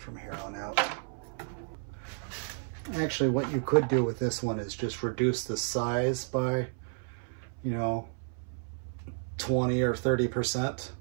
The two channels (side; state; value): left; silent; 57 dB below the other